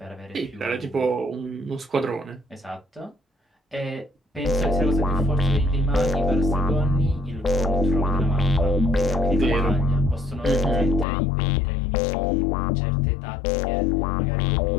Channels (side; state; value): right; drops out; at 11.1 s